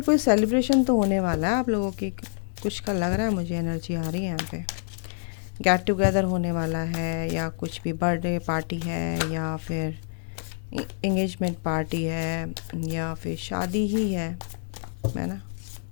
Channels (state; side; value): silent; right; digital silence